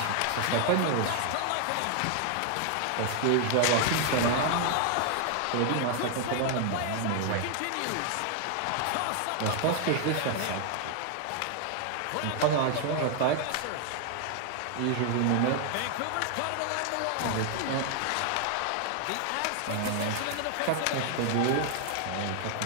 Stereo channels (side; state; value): both; different; correlation 0.00